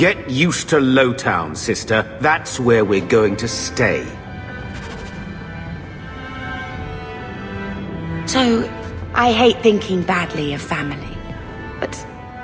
used to Lowtown, sister. That's where we're going to stay. So, I hate thinking badly of family, but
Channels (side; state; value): both; identical; correlation 1.00